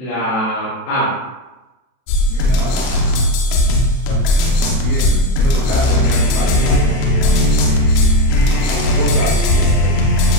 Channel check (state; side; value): late; right; 32 ms